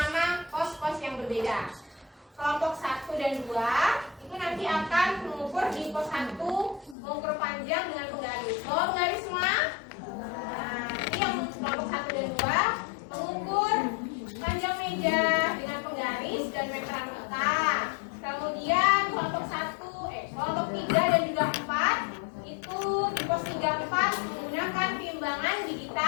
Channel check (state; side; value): drops out; right; at 7.0 s